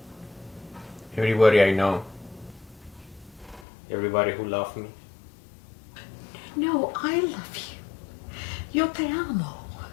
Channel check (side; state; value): right; drops out; at 3.7 s